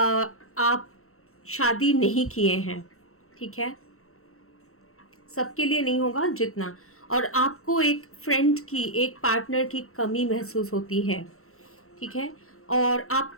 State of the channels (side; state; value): right; late; 0.63 ms